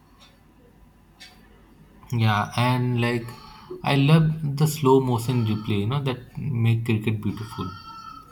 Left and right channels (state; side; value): identical; both; correlation 1.00